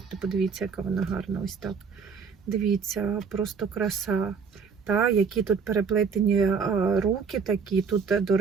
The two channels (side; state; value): left; quieter; 5.8 dB